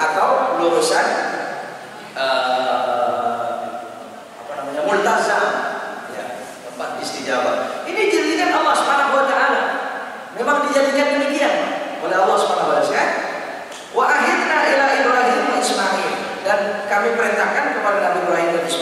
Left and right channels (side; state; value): both; identical; correlation 1.00